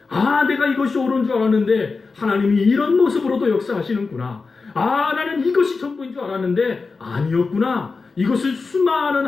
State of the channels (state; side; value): quieter; right; 4.3 dB